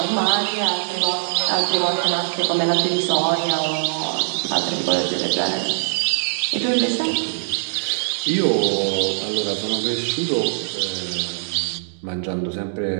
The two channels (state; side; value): silent; left; digital silence